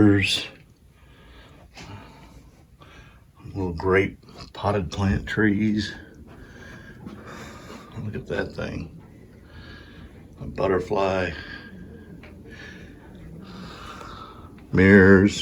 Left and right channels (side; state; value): both; identical; correlation 1.00